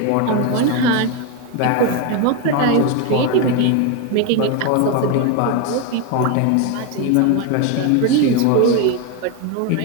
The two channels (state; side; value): different; both; correlation 0.02